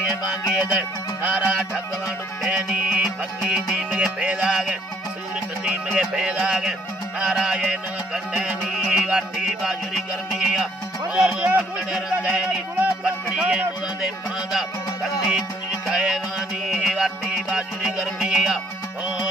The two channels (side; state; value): both; normal; correlation 0.63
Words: मांगे दे नारा ठगवा डुकेनी भक्ति दीम के पैदागे सूरत दीम के पैदागे नारायण कंडनी वाटी बाजुरी गर्मिया कंडे रंदेनी पटड़िए मुदे पादा कंडी कुंज कायवानी वाटी बाजुरी गर्मिया